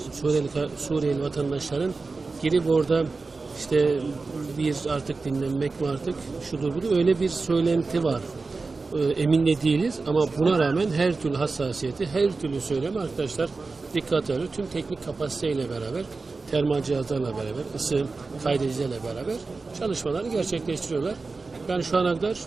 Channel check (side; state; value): left; quieter; 4.0 dB